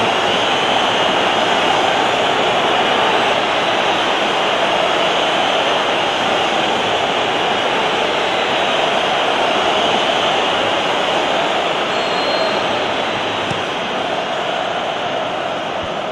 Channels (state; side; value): identical; both; correlation 1.00